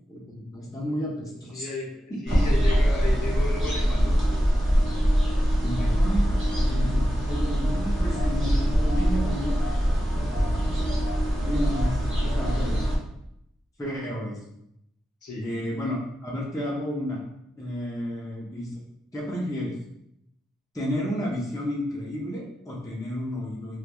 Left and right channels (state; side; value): normal; both; correlation 0.91